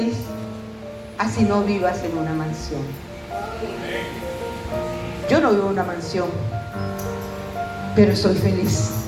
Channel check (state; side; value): identical; both; correlation 1.00